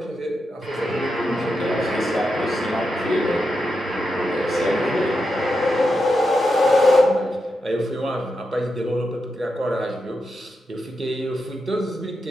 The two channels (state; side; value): normal; both; correlation 0.86